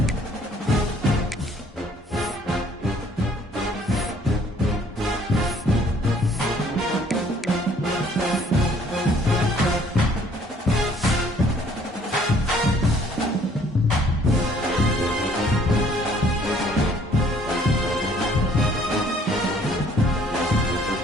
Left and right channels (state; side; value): normal; both; correlation 0.60